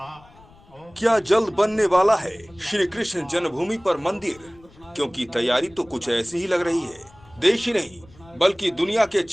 क्या जल्द बनने वाला है श्री कृष्ण जन्मभूमि पर मंदिर? क्योंकि तैयारी तो कुछ ऐसी ही लग रही है। देश ही नहीं बल्कि दुनिया के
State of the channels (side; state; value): left; noise; rumble, 26 dB below the sound